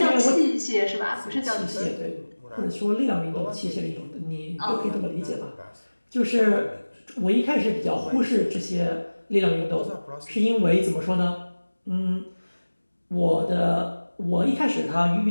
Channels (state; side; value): inverted; both; correlation -1.00